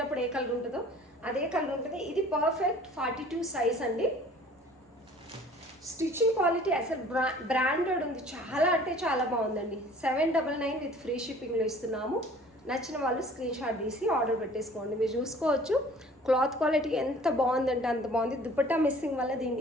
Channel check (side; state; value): both; normal; correlation 0.50